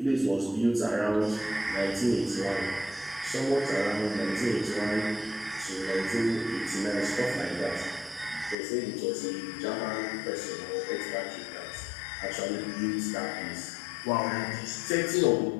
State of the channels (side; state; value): right; drops out; at 8.6 s